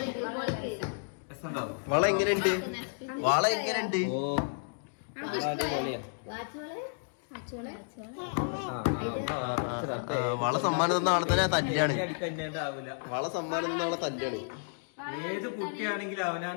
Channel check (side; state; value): right; silent; digital silence